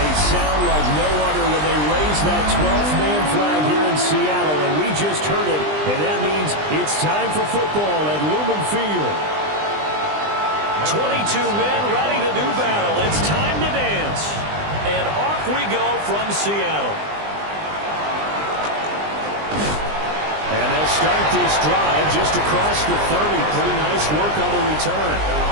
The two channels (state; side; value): late; left; 20 ms